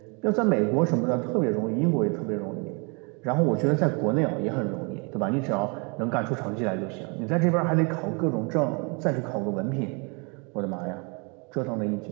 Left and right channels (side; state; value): left; quieter; 32.9 dB